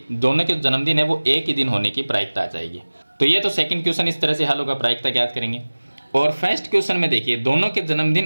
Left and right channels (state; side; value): inverted; both; correlation -1.00